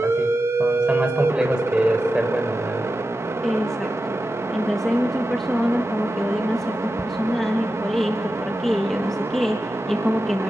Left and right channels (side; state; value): both; normal; correlation 0.91